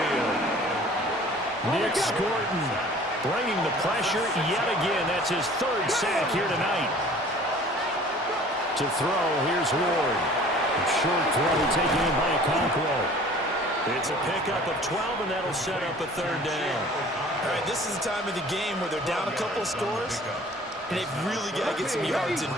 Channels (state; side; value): normal; both; correlation 0.49